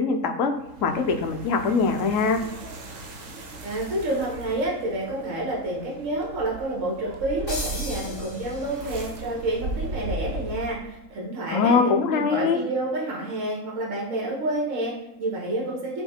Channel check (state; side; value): late; left; 3.7 ms